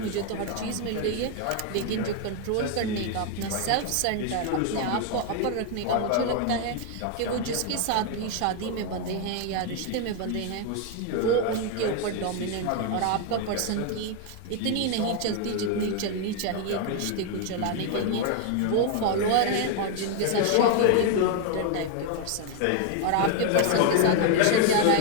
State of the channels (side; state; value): both; different; correlation 0.01